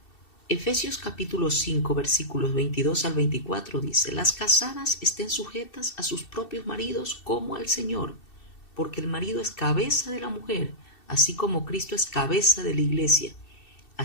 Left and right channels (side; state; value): right; late; 2.7 ms